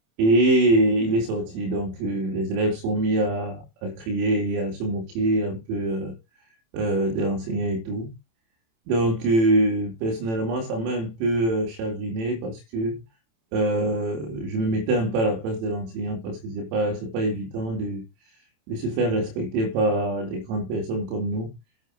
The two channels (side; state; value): left; late; 27 ms